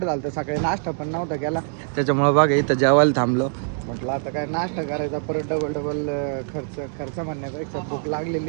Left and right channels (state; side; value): silent; left; 63 dB below the other